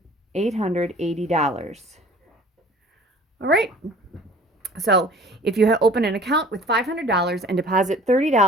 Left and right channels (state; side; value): normal; both; correlation 0.48